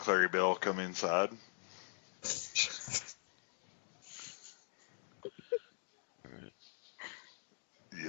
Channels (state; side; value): silent; right; digital silence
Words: Bell come inside. All right.